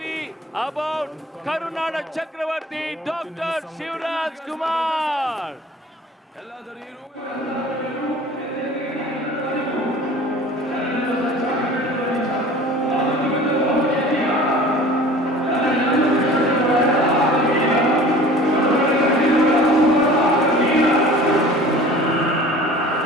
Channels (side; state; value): both; normal; correlation 0.44